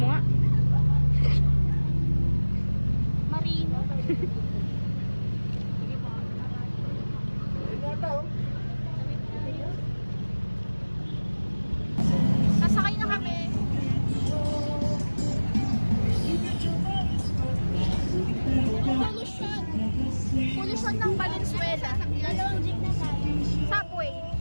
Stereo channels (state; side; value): inverted; both; correlation -1.00